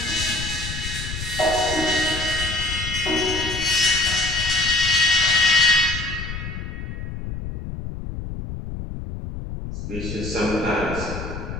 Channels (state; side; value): noise; left; rumble, 7 dB below the sound